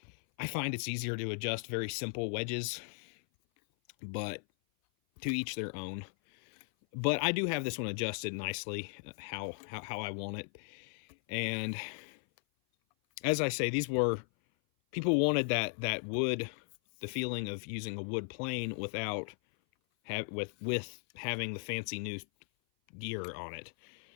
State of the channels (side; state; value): right; silent; 53 dB below the other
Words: find it's easier to adjust very simple wedges, but to each their own. But I do have this one adjusted nicely how I want it. And as I say, people wanted that wood, the feeling of using a wood plane without with having the fancy new gear on it.